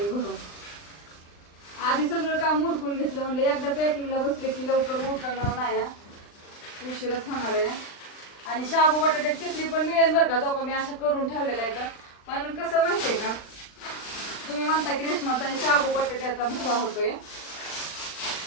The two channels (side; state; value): right; late; 39 ms